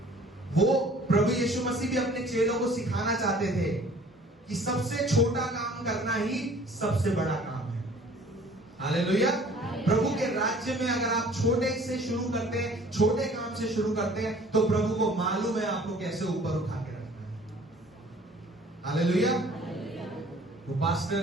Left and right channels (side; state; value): both; normal; correlation 0.52